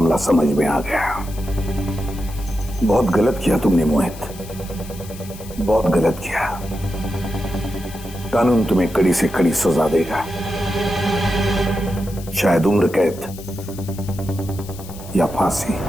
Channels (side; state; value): left; noise; hiss, 17 dB below the sound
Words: समझ में आ गया। बहुत गलत किया तुमने मोहित, बहुत गलत किया। कानून तुम्हें कड़ी से कड़ी सजा देगा, शायद उम्र कैद या फांसी।